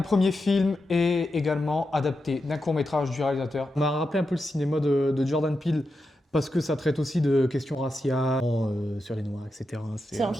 premier film et également adapté d'un court-métrage du réalisateur. On m'a rappelé un peu le cinéma de Jordan Peele parce que ça traite aussi de questions raciales, sur les noirs, etc. C'est un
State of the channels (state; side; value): normal; both; correlation 0.88